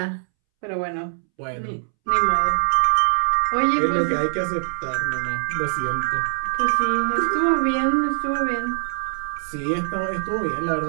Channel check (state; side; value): silent; left; 64 dB below the other